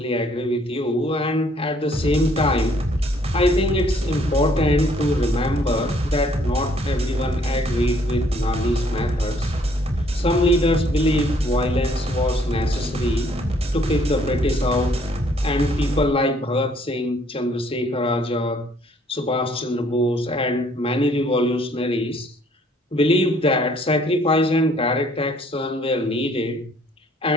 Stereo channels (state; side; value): normal; both; correlation 0.63